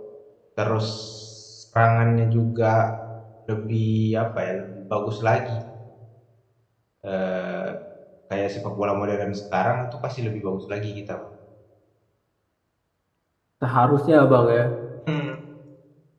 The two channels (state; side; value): identical; both; correlation 1.00